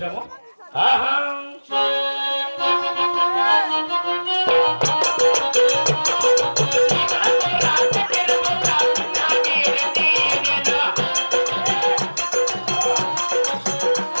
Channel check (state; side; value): inverted; both; correlation -1.00